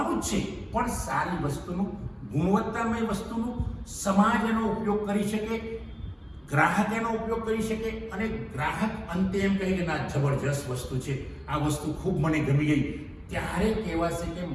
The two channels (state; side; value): identical; both; correlation 1.00